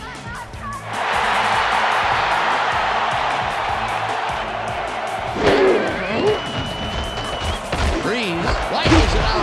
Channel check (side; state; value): both; identical; correlation 1.00